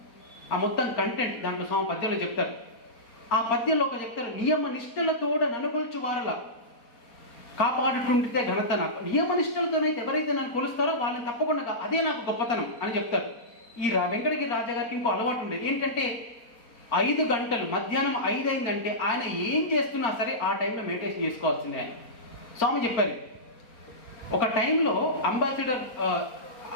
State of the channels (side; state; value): right; late; 4.3 ms